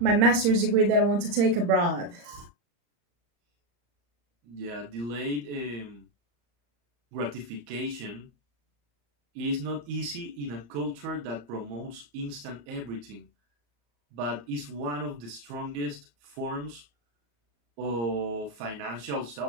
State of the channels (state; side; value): late; left; 34 ms